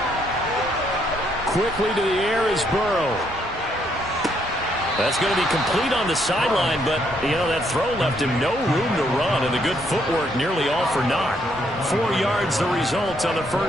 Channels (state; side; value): normal; both; correlation 0.72